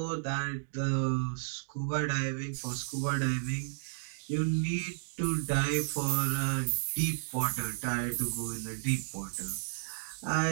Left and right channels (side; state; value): left; silent; digital silence